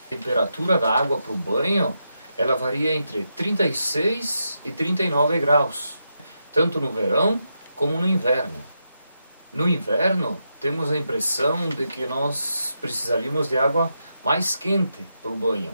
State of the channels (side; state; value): both; inverted; correlation -0.84